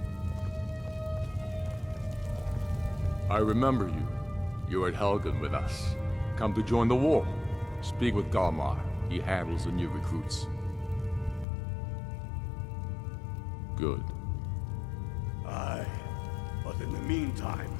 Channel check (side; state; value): right; drops out; at 11.5 s